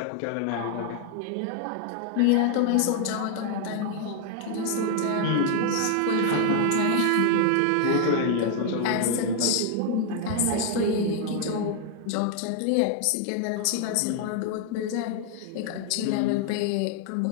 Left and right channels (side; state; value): both; different; correlation 0.00